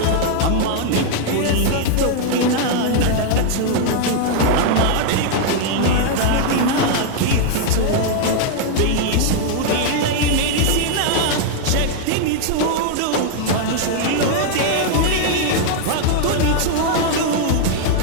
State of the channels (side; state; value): both; different; correlation 0.00